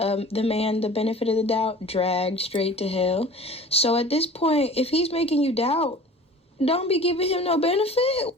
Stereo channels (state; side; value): normal; both; correlation 0.42